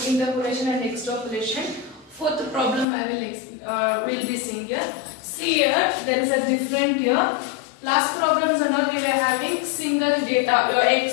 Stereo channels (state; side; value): drops out; right; at 2.9 s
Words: interpolation and extrapolation. Fourth problem I will be seeing here. See here, there is a different here. Last problems and all we were having single data. Your